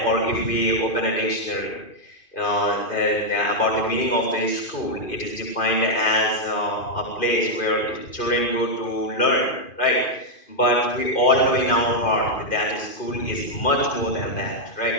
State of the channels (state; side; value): late; right; 2.5 ms